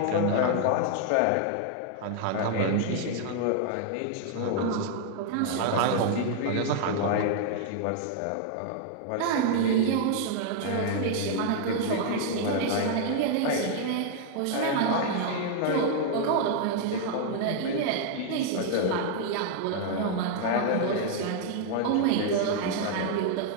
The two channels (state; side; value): different; both; correlation 0.00